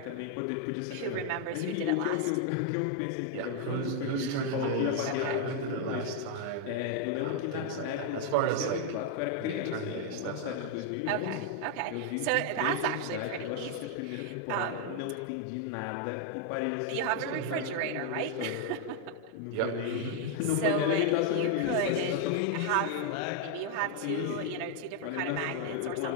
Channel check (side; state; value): both; different; correlation 0.00